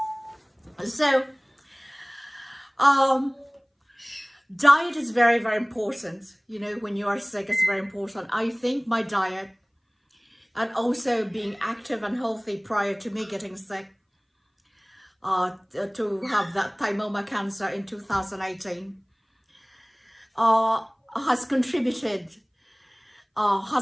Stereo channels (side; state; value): both; identical; correlation 1.00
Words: So, diet is very, very important. When you are sick, it's very important. I think my diet, and also being active and healthy prior to me getting sick, to have that thymoma cancer in 2018, has contributed,